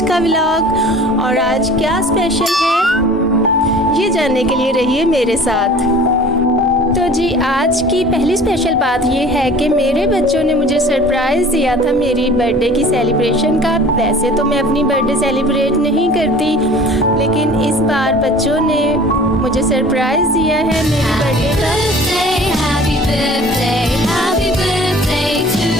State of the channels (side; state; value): both; normal; correlation 0.46